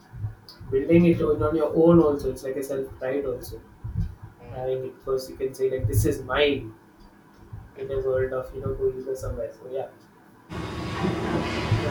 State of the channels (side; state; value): both; identical; correlation 1.00